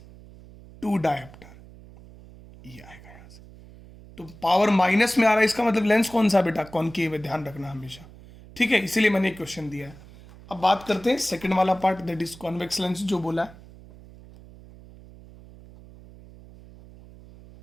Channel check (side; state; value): right; noise; hum, 20 dB below the sound